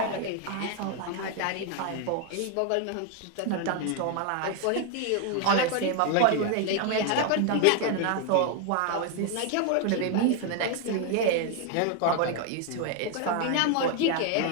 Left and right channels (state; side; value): different; both; correlation 0.01